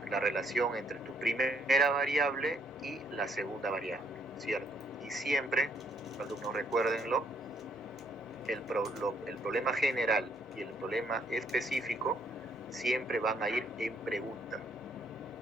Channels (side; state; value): both; normal; correlation 0.69